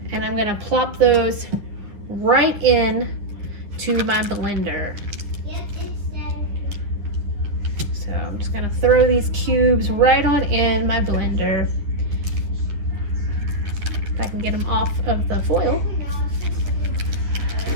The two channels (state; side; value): late; left; 10 ms